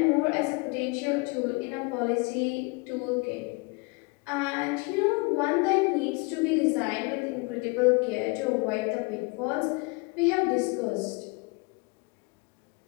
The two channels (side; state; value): right; quieter; 28.9 dB